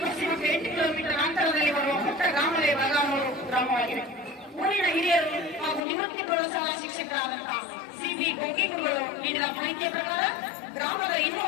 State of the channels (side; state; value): right; drops out; at 5.8 s